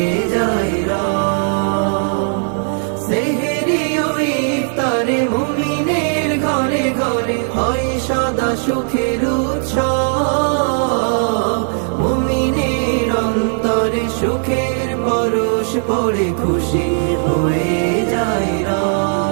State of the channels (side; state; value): left; silent; 56 dB below the other